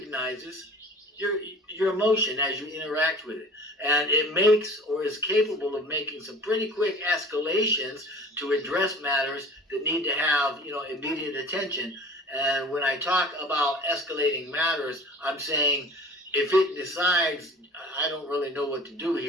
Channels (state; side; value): normal; both; correlation 0.43